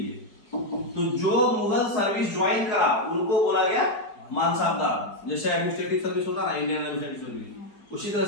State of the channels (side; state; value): right; late; 4.8 ms